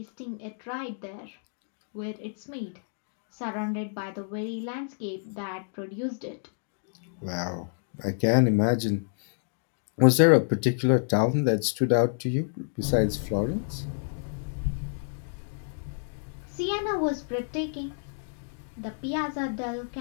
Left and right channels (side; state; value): right; silent; digital silence